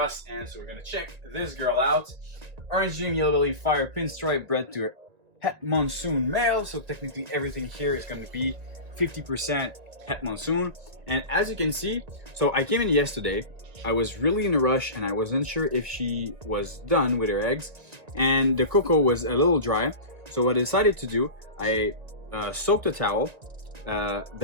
and so we're gonna check this girl out. Orange dream, yellow belly, fire, pinstripe, bred to het monsoon male, so technically everything here is going to be 50% het monsoon. And as you can see, so I came in yesterday, I was really in a rush and I wasn't sure if she was done with her eggs, and the cocoa was a little dry, so what I decided to do, I soaked a towel,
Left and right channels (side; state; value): left; late; 1.9 ms